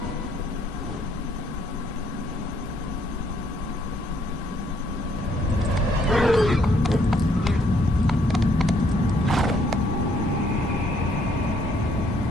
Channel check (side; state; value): both; normal; correlation 0.68